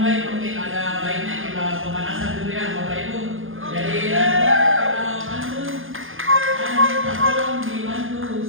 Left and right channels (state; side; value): late; left; 0.59 ms